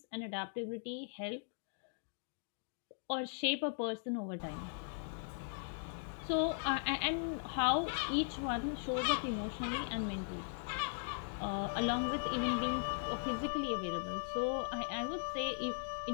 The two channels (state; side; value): silent; right; digital silence